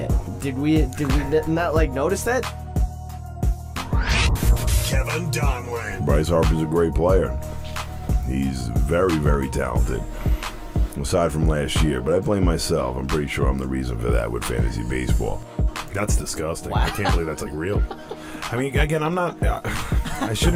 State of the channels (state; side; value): identical; both; correlation 1.00